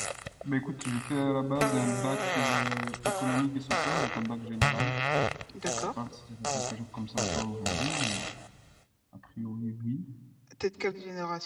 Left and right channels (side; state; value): both; identical; correlation 1.00